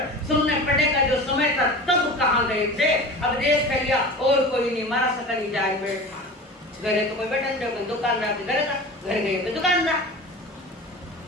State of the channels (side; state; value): both; normal; correlation 0.34